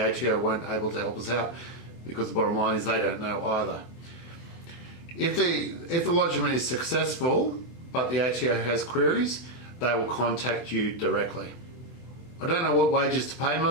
weren't able to help us out because the bottom line is they don't know either. If the lodgement is successful, but the ATO has queries, they will contact you directly. I don't know what wages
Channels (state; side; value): late; right; 24 ms